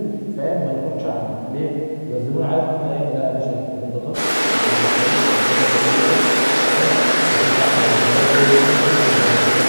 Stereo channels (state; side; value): inverted; both; correlation -1.00